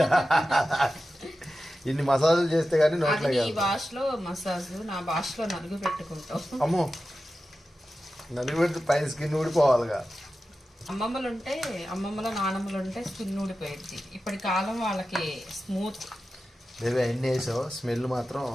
ఇన్ని మసాజులు చేస్తే గానీ నోట్లో. నీ భాషలో మసాజ్, నా భాషలో నలుగు పెట్టుకుంటాం. అమ్మో, నలిగిపెడితే పైన స్కిన్ ఊడిపోవాలిగా. అమ్మమ్మలు ఉంటే నానమ్మలు ఉంటే స్కిన్ ఊడిపోయింది. ఇప్పటి కాలం వాళ్ళకి స్మూత్. బేబీ అన్నీ వేసావు, స్మెల్ మాత్రం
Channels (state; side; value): normal; both; correlation 0.93